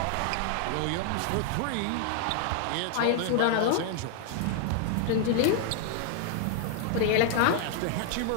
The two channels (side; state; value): both; different; correlation 0.00